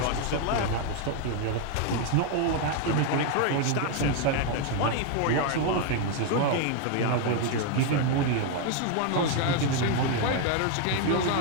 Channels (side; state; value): both; different; correlation 0.01